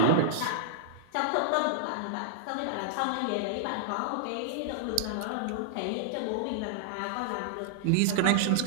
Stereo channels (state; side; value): different; both; correlation -0.01